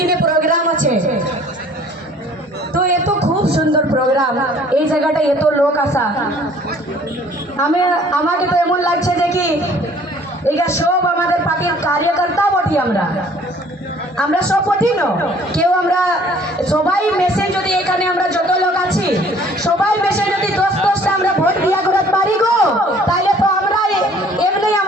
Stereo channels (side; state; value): both; normal; correlation 0.55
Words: প্রোগ্রাম আছে, তো এত খুব সুন্দর প্রোগ্রাম, এই জায়গাটা এত লোক আসা, আমাকে তো এমন লাগছে যে কি এটা সব আমাদের পার্টির কার্যকর্তা বটি আমরা সব বটি না কেউ আমরা সবাই মেসে যদি এখানে আমরা যত লোক আছি সবাই মেসে যদি 10-10টা আমরা ভোট দিয়া করতে পারি গো তাহলে তো আমরা এমনি